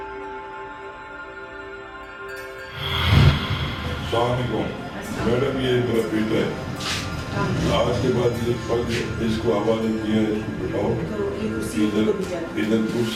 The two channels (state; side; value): identical; both; correlation 1.00